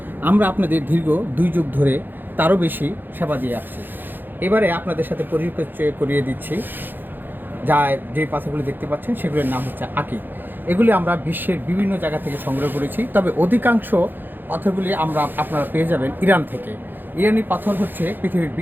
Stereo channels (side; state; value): left; late; 0.092 ms